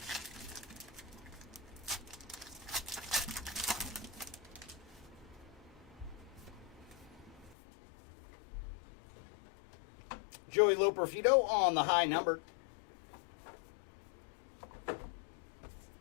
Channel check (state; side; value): drops out; right; at 7.6 s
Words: Joey Loperfido on the high numbered.